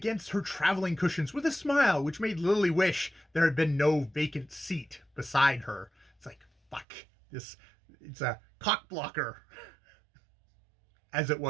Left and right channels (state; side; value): drops out; left; at 6.9 s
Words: her traveling cushions with a smile, which made Lily wish there had been no vacant seat beside her. It's like, fuck, it's a cock blocker, as it